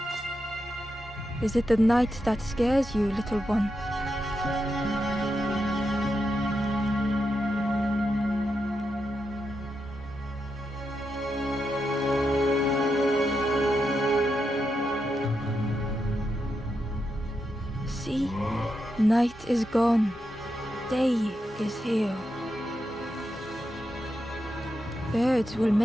Is it the night that scares you, little one? See, night is gone. Day is here. Birds will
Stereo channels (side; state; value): both; normal; correlation 0.85